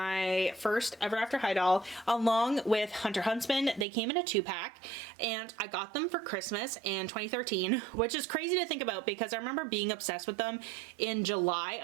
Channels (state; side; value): drops out; left; at 3.9 s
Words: first Ever After High doll along with Hunter Huntsman. They came in a 2-pack, and I got them for Christmas in 2013, which is crazy to think about because I remember being obsessed with them in July